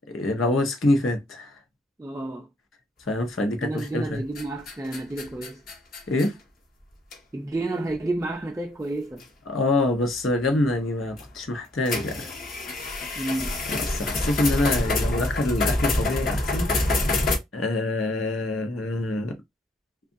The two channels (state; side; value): normal; both; correlation 0.68